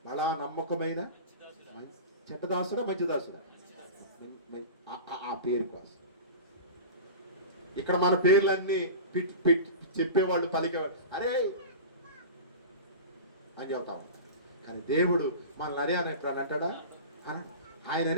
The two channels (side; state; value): both; inverted; correlation -0.31